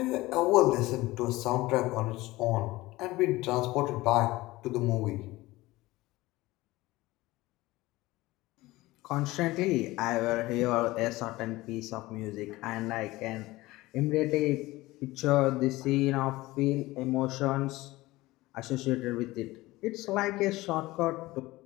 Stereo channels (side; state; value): right; quieter; 19.2 dB